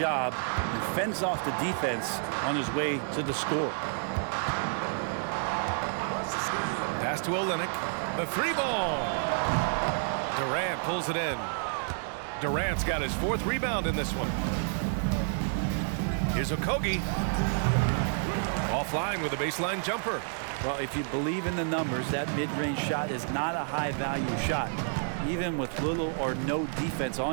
and fends off the defense on his way to the score. Pass to Olynyk. The 3 ball. Durant pulls it in. Durant's got his 4th rebound in this one. Here's Okogie. Offline with a baseline jumper. Well, if you believe in the numbers, that mid-range shot is not a high-value shot, even with little or no defense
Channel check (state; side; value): silent; left; digital silence